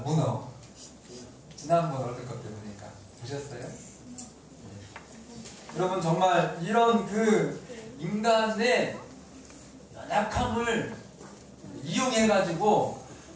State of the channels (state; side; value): identical; both; correlation 1.00